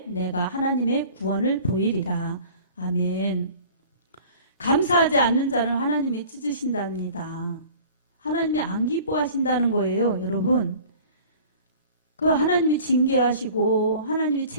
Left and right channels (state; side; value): inverted; both; correlation -0.45